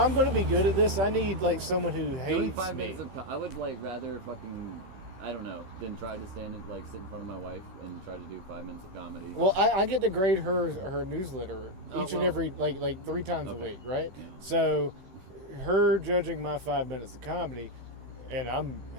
going to be good at this, I need like someone who Doing hates 5 me. minutes I would rather fucking, I don't know, than try to stand and sit in front of my wife and try to do 5 minutes of comedy. Well, I get to grade her newsletter Oh, each and well. every like 3 times a Okay. week, right? Yeah. So her judging my 5 minutes of comedy, and I'm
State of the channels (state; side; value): late; left; 15 ms